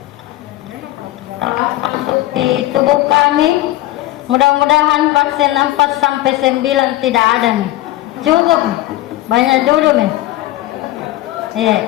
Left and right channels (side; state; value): right; quieter; 16.2 dB